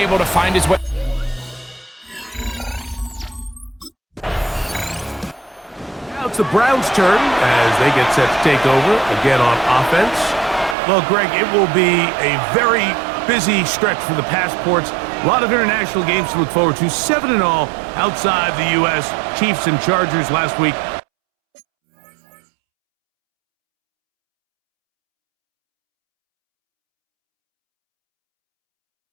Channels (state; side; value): drops out; left; at 10.8 s